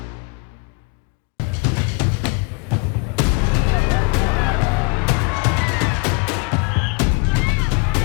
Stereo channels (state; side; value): quieter; right; 30.4 dB